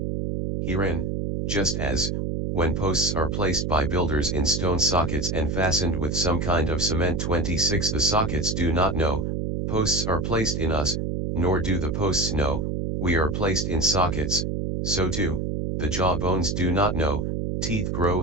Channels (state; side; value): noise; right; hum, 1 dB below the sound